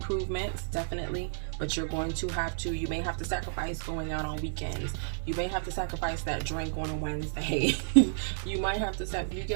definitely, but you're going to have to, you may have to sacrifice going out on weekends. You may have to sacrifice that drink on a Wednesday. You might have to you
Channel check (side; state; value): left; silent; digital silence